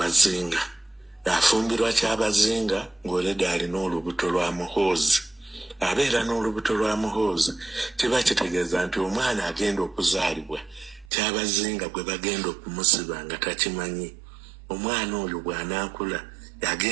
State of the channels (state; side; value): drops out; left; at 11.1 s